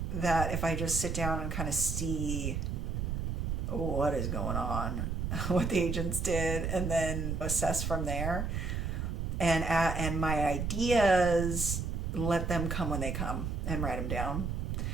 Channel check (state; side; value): noise; right; rumble, 2 dB below the sound